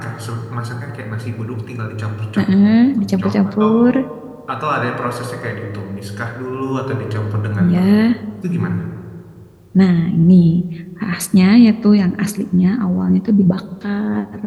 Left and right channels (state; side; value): identical; both; correlation 1.00